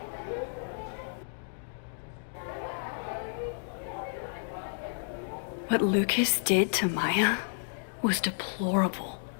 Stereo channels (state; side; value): silent; right; digital silence